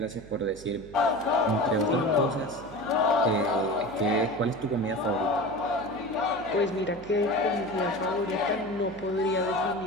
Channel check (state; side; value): noise; right; hum, 19 dB below the sound